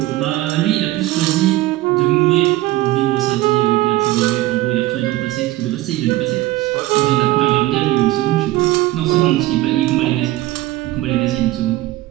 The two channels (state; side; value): quieter; left; 17.0 dB